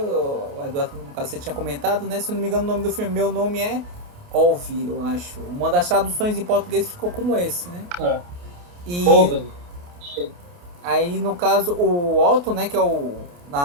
Eduardo, no caso, você tinha comentado, né, se eu não me engano, o nome do filme Meu Nome é Ove, eu acho. Uma das traduções em português ficou como esse, né. E aí, no caso, o Otto, né, que é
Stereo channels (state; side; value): late; left; 28 ms